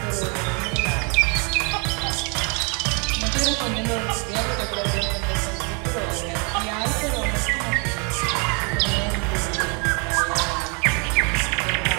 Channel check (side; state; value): left; quieter; 34.7 dB